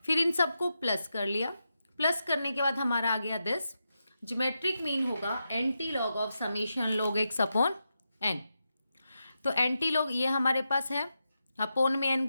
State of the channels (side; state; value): both; inverted; correlation -0.88